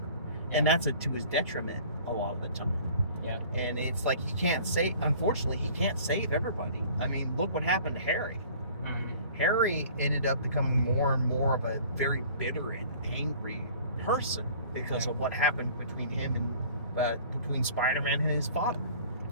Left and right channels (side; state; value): both; inverted; correlation -0.48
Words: And that's to his detriment a lot of the time. Yeah. And it's like unfortunately, he can't save everybody. I mean, look what happened to Harry. Harry ended up becoming more and more of a very bitter and angry person because of what happened between him and between Spider-Man and his father.